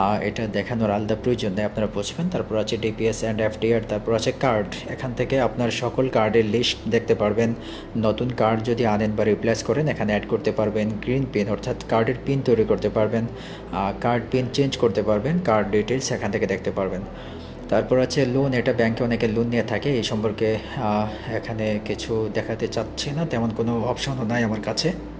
এটা দেখানোর আলাদা প্রয়োজন নেই, আপনারা বুঝবেন। তারপর আছে ডিপিএস অ্যান্ড এফডিআর। তারপর আছে কার্ড, এখান থেকে আপনার সকল কার্ডের লিস্ট দেখতে পারবেন। নতুন কার্ড যদি আনেন বা রিপ্লেস করেন এখানে অ্যাড করতে পারবেন। গ্রিন পিন, অর্থাৎ কার্ডের পিন তৈরি করতে পারবেন, কার্ড পিন চেঞ্জ করতে পারবেন, কার্ড ডিটেলস এখান থেকে দেখতে পারবেন। তারপর আছে লোন, এটা ব্যাংকে অনেকে লোন নিয়ে থাকে, এই সম্পর্কে এখানে কিছু দেখাতে চাচ্ছি না, তেমন কোনো অপশনও নাই আমার কাছে।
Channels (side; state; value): both; identical; correlation 1.00